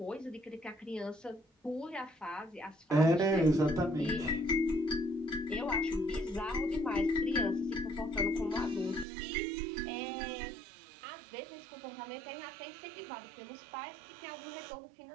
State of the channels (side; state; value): left; drops out; at 9.1 s